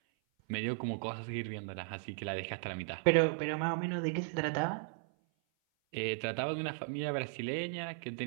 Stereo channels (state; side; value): silent; left; 54 dB below the other